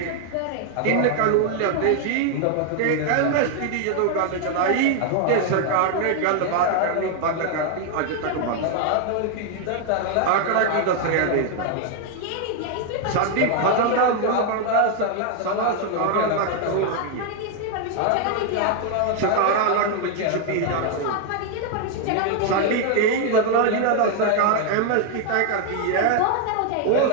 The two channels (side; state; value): both; different; correlation 0.00